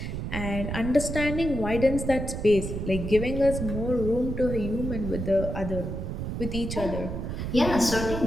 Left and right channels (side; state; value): right; noise; rumble, 4 dB below the sound